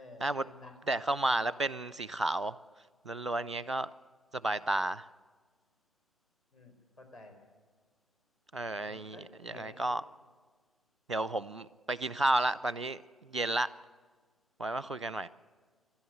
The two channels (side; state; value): both; normal; correlation 0.81